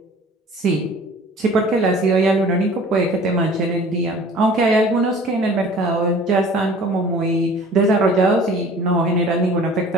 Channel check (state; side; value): normal; both; correlation 0.47